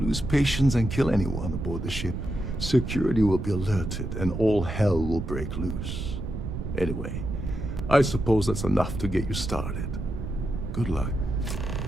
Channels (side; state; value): right; noise; rumble, 6 dB below the sound